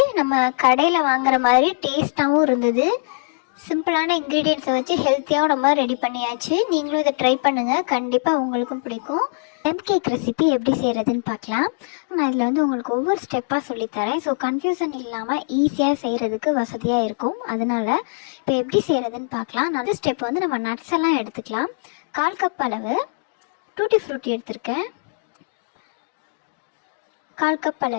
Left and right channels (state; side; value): silent; right; digital silence